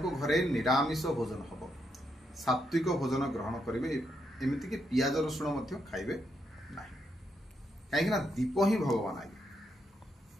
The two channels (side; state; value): both; normal; correlation 0.80